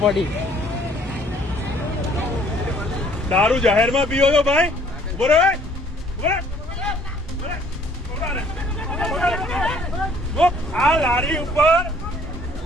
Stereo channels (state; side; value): normal; both; correlation 0.59